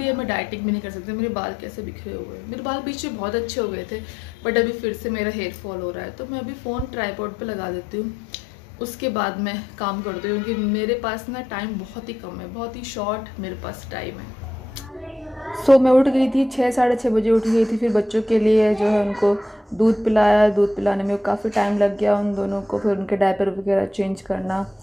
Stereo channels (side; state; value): both; normal; correlation 0.82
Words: है। मैं डाइटिंग भी नहीं कर सकती। मेरे बाल कैसे बिखरे हुए हैं, मेरे बाल बीच में बहुत अच्छे हो गए थे, बट अभी फिर से मेरा हेयर फॉल हो रहा है। तो मैं अभी फ़ोन ट्राईपॉड पे लगा देती हूँ, उसके बाद मैं काम करती हूँ, क्योंकि मेरे पास ना टाइम बहुत ही कम है, बहुत ही शॉर्ट मेरे पास टाइम है। सो मैं उठ गई थी 6 साढ़े 6 बजे उठ गई थी। फिर बच्चों के लिए जो है उनको दूध पिलाया। दूध पिलाने में काफ़ी टाइम लग गया उन दोनों को। फिर उनके डायपर वगैरह चेंज करना,